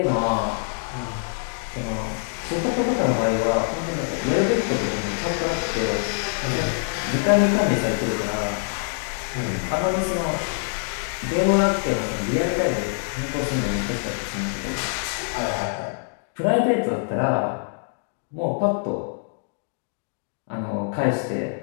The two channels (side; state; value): right; silent; digital silence